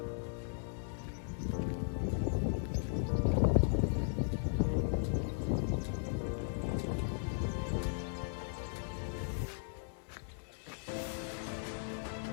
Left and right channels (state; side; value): silent; right; 53 dB below the other